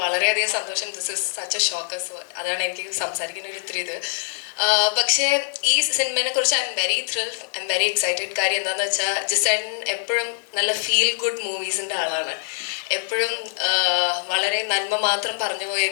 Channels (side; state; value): right; silent; digital silence